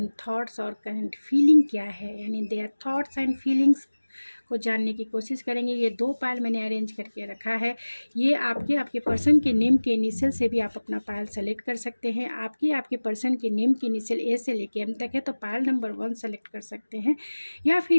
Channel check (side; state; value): both; inverted; correlation -1.00